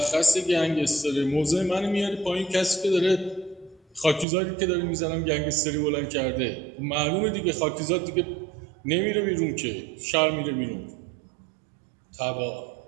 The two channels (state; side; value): drops out; left; at 4.2 s